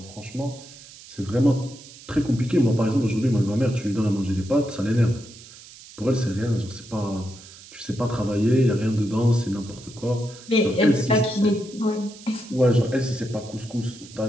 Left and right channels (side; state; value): right; noise; hiss, 19 dB below the sound